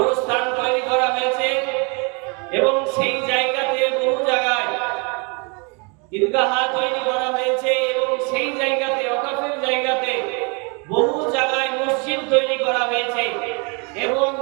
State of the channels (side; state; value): left; quieter; 32.9 dB